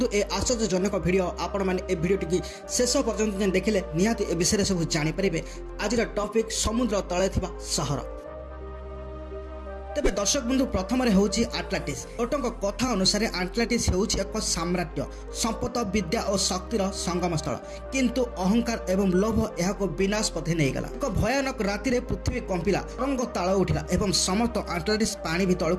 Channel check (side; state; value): both; identical; correlation 1.00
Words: ଏ ଆଶ୍ଚର୍ଯ୍ୟଜନକ ଭିଡ଼ିଓ ଆପଣମାନେ ଏ ଭିଡ଼ିଓଟିକି ଶେଷ ପର୍ଯ୍ୟନ୍ତ ଦେଖିଲେ ନିହାତି ଏ ବିଷୟରେ ସବୁ ଜାଣିପାରିବେ। ଆଜିର ଟପିକ୍ ସମୁଦ୍ର ତଳେ ଥିବା ସହର। ତେବେ ଦର୍ଶକ ବନ୍ଧୁ, ପ୍ରଥମରେ ହେଉଛି ଆଟଲାଣ୍ଟିସ୍। ଲୋକଙ୍କ କଥା ଅନୁସାରେ ଆଟଲାଣ୍ଟିସ୍ ହେଉଛି ଏକ ସାମ୍ରାଜ୍ୟ, ସମ୍ପଦ, ବିଦ୍ୟା ଓ ଶକ୍ତିର ସଙ୍ଗମସ୍ଥଳ। କିନ୍ତୁ ଅହଙ୍କାର ଏବଂ ଲୋଭ ଏହାକୁ ବିନାଶ ପଥେ ନେଇଗଲା। ଏକ ଭୟାନକ ରାତିରେ ପୃଥିବୀ କମ୍ପିଲା, ତରଙ୍ଗ ତାଳ ଉଠିଲା ଏବଂ ସମସ୍ତ ଆଟଲାଣ୍ଟିସ୍ ପାଣି